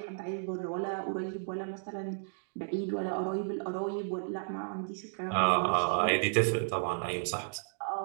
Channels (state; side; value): silent; left; digital silence